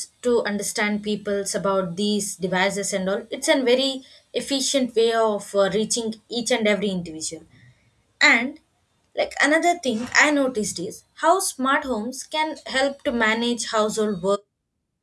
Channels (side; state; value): both; identical; correlation 1.00